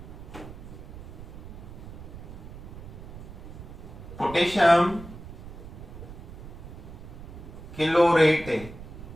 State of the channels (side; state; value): right; noise; rumble, 13 dB below the sound